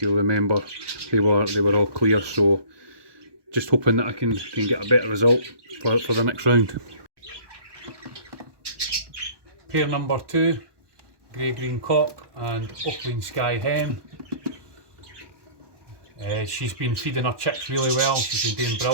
remember, they were all clear, so just hoping that I can get a better result for the next round. Pair number 2, grey-green cock and opaline sky hen. She's been feeding her chicks really well. She's been doing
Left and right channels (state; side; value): late; left; 1.2 ms